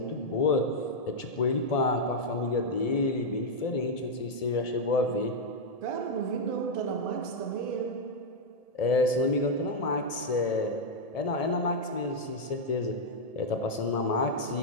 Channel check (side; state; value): right; late; 1.7 ms